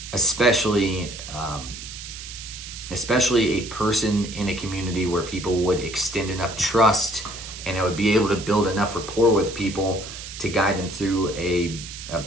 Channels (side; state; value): right; noise; hiss, 11 dB below the sound